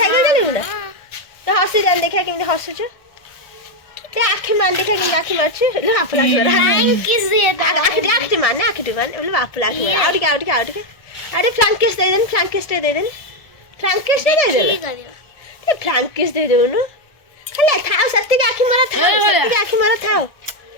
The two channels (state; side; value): late; right; 1.4 ms